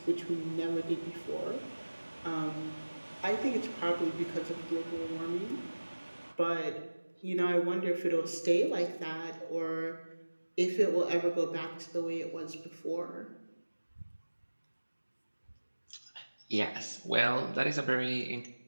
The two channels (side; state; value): both; inverted; correlation -1.00